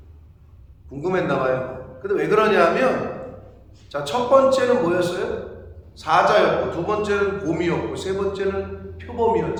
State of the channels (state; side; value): identical; both; correlation 1.00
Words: 궁금했나 봐요. 근데 왜 그러냐면 자, 첫 번째는 뭐였어요? 사자였고, 두 번째는 곰이었고, 세 번째는